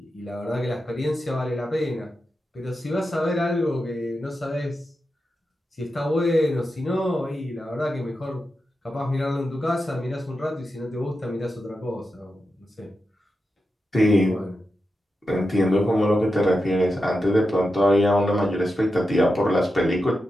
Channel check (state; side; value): normal; both; correlation 0.89